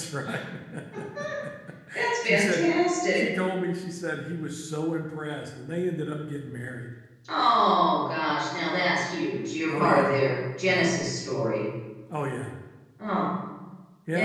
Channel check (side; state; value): both; identical; correlation 1.00